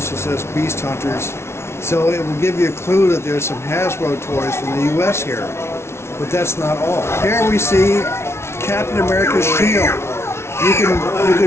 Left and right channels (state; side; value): late; right; 0.13 ms